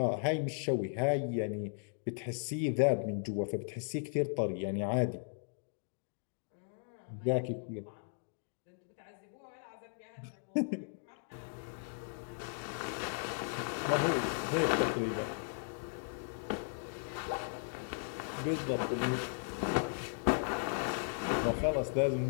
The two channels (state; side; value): silent; right; digital silence